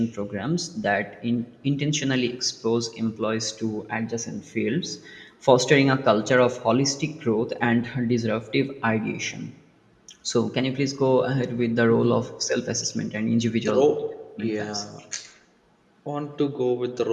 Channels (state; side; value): identical; both; correlation 1.00